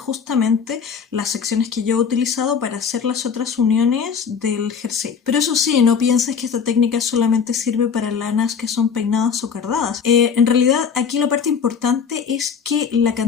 las secciones que yo he utilizado para hacer las otras uniones del jersey. Pero eso sí, no pienses que esta técnica solamente sirve para lanas que son peinadas o cardadas. En realidad aquí la parte importante es que la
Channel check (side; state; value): right; quieter; 6.4 dB